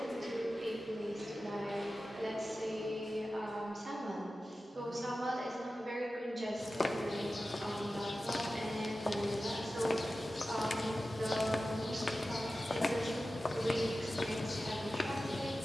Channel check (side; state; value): both; normal; correlation 0.94